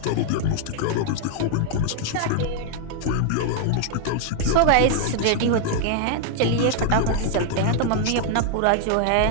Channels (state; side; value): different; both; correlation 0.00